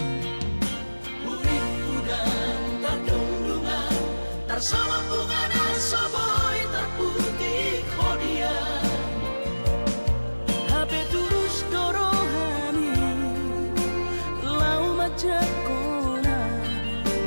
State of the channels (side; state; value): both; inverted; correlation -1.00